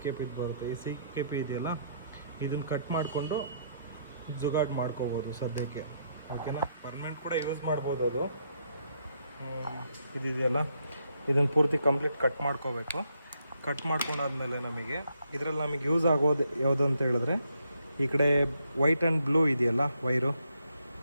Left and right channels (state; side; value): inverted; both; correlation -0.75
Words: ಬರುತ್ತೆ. ಈ CKP ಇದೆಯಲ್ಲ, ಇದನ್ನು ಕಟ್ ಮಾಡಿಕೊಂಡು ಜುಗಾಡ್ ಮಾಡ್ಕೋಬೋದು ಸದ್ಯಕ್ಕೆ. ಓಕೆನಾ. ಪರ್ಮನೆಂಟ್ ಕೂಡ ಯೂಸ್ ಮಾಡ್ಬೋದು. ಅದು ಇದೆಯಲ್ಲ, ಇದನ್ನು ಪೂರ್ತಿ ಕಂಪ್ಲೀಟ್ ಕಟ್ ಮಾಡ್ಕೋಬೇಕು. ಕಟ್ ಮಾಡ್ಕೊಂಡಾದ್ಮೇಲೆ ಇದರಲ್ಲಿ ನಮಗೆ ಯೂಸ್ ಆಗೋದು ಯಾವುದು ಅಂತ ಹೇಳಿದ್ರೆ, ಈ ಕಡೆ ವೈಟ್ ಆ್ಯಂಡ್ ಬ್ಲೂ ಇದೆಯಲ್ಲ ವೈರು,